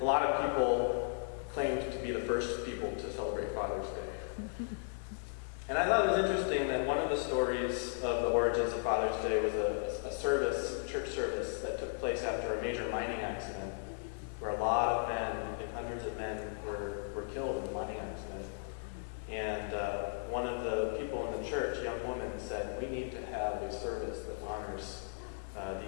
a lot of people claimed to be the first people to celebrate Father's Day. And I thought it was interesting that one of the stories of the origins of Father's Day was a church service that took place after a major mining accident, where a lot of men, I think hundreds of men, were killed in the mining accident. And one of the people in the church, a young woman, said, we need to have a service that honors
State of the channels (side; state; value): right; silent; digital silence